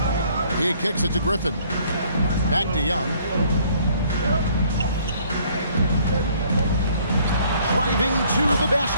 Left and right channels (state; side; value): inverted; both; correlation -0.60